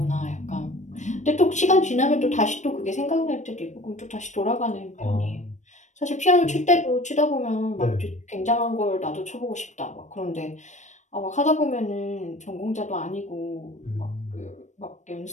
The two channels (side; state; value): right; late; 0.35 ms